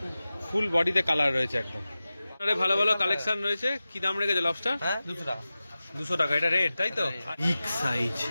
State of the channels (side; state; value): both; inverted; correlation -0.96